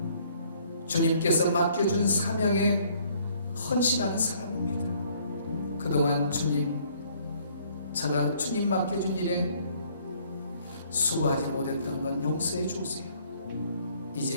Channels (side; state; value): both; inverted; correlation -0.61